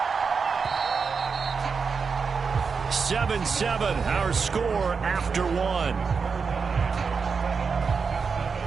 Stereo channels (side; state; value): left; quieter; 5.3 dB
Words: 7-7, our score after 1.